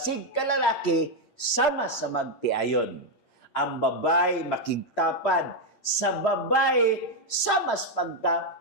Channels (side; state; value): right; late; 8.6 ms